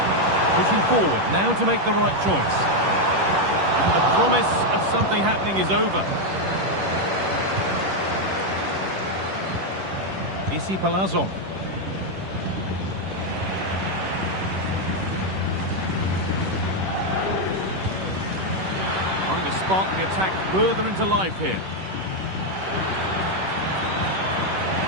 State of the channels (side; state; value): left; late; 10 ms